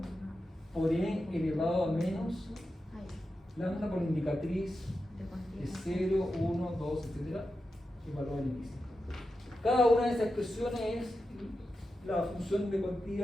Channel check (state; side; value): normal; both; correlation 0.90